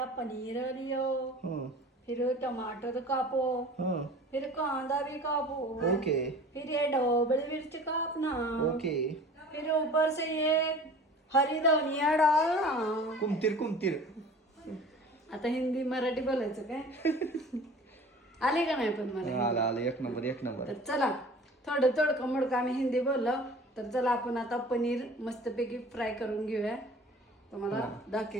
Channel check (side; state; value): both; normal; correlation 0.43